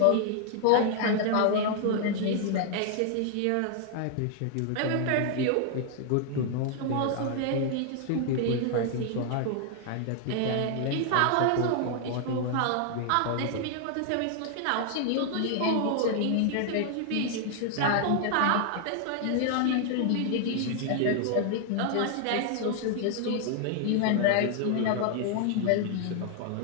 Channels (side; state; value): both; different; correlation 0.00